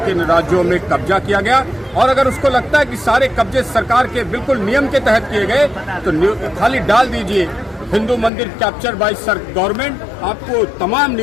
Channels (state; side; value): drops out; right; at 8.3 s